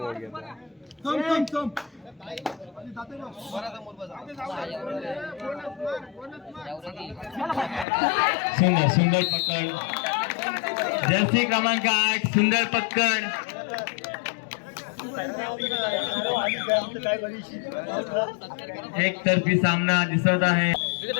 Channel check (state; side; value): drops out; right; at 7.9 s